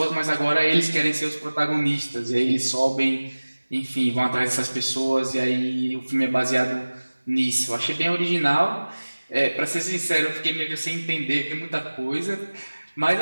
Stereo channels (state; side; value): inverted; both; correlation -1.00